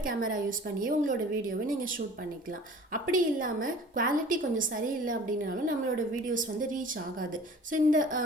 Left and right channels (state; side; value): normal; both; correlation 0.46